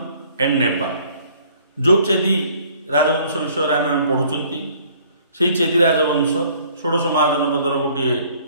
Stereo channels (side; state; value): both; inverted; correlation -0.58